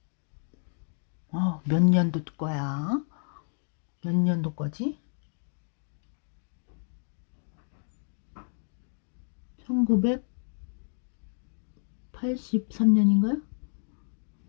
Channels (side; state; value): right; silent; 57 dB below the other